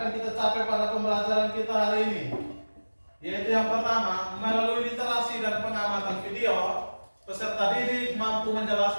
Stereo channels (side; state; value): both; inverted; correlation -1.00